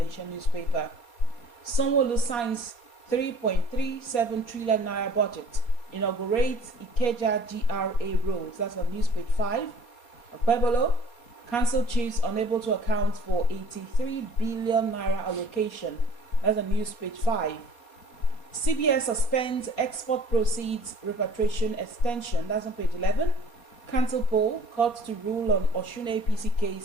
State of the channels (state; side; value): late; right; 4.2 ms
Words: newspaper. Sanwo-Olu signs 3.37 trillion naira budget. Inaugurates Ikeja GRA roads. That's on news page 5. Okpebolo, council chiefs unable to account for 83 billion naira allocation. That's on news page 5. CBS suspends export proceeds repatriation extension. That's on page 11. Council poll, court to rule on Osun APC